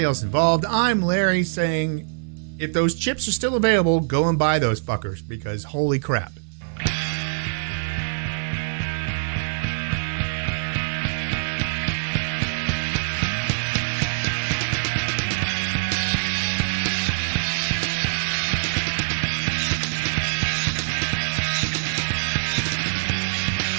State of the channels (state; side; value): silent; left; digital silence